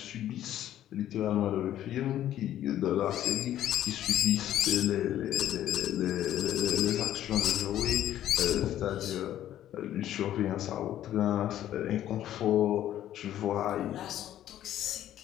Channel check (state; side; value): quieter; right; 12.1 dB